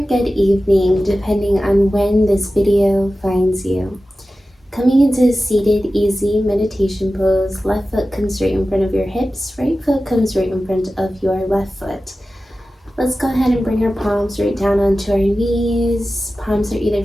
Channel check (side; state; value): both; normal; correlation 0.95